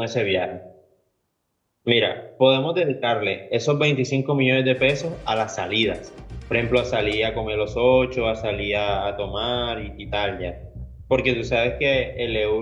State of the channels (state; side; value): identical; both; correlation 1.00